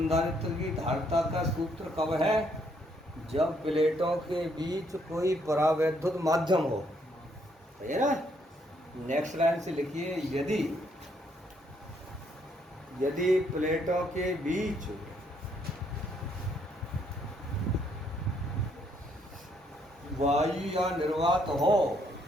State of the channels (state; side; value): normal; both; correlation 0.71